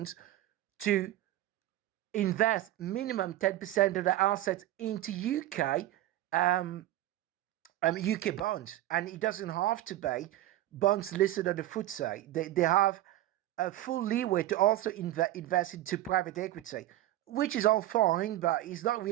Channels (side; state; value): left; quieter; 14.5 dB